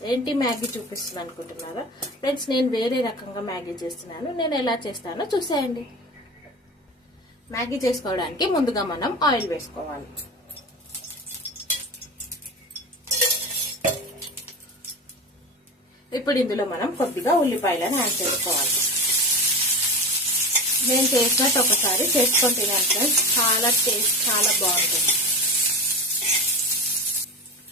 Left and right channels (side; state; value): both; normal; correlation 0.27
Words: ఏంటి మ్యాగీ చూపిస్తున్నాను అనుకుంటున్నారా ఫ్రెండ్స్? నేను వేరే రకంగా మ్యాగీ చేస్తున్నాను. నేను ఎలా చేస్తానో చూసేయండి. మ్యాగీ చేసుకోవడానికి ముందుగా మనం ఆయిల్ వేసుకోవాలి. ఇప్పుడు ఇందులో మనం కొద్దిగా ఉల్లిపాయలను యాడ్ చేసుకోవాలి. నేను చేసినట్టు ఒకసారి చేసుకొని తినాను ఫ్రెండ్స్. చాలా బాగుంటుంది.